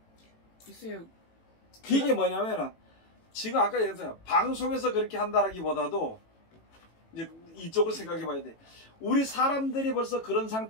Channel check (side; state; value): right; late; 18 ms